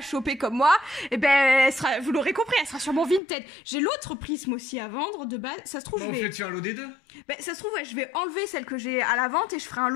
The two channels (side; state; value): right; drops out; at 3.2 s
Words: comme moi, et ben elle sera, vous l'aurez compris, elle sera sur mon Vinted. J'ai l'autre prisme aussi à vendre de base, ça se trouve bon, je vais... tu as un lot des deux. Ben ça se trouve ouais, je vais enlever celle que j'ai à la vente et je ferai un